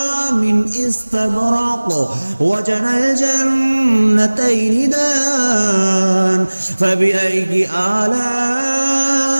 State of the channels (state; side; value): inverted; both; correlation -1.00